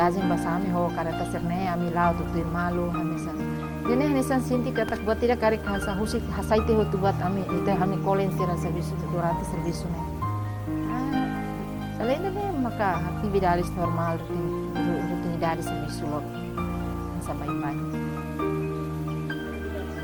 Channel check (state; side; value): identical; both; correlation 1.00